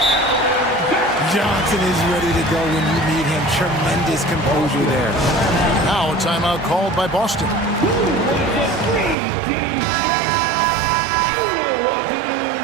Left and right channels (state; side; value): drops out; left; at 9.2 s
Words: Johnson is ready to go when you need him. Tremendous composure there. Now a timeout called by Boston.